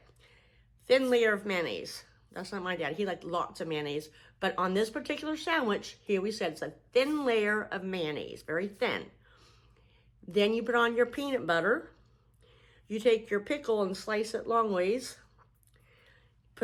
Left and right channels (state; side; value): identical; both; correlation 1.00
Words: thin layer of mayonnaise. That's not my dad. He liked lots of mayonnaise. But on this particular sandwich, here we said it's a thin layer of mayonnaise, very thin. Then you put on your peanut butter. You take your pickle and slice it long ways.